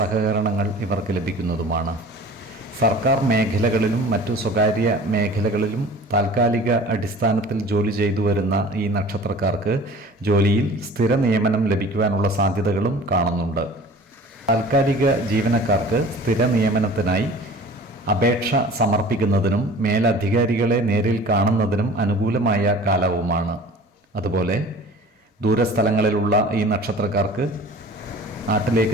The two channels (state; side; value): normal; both; correlation 0.44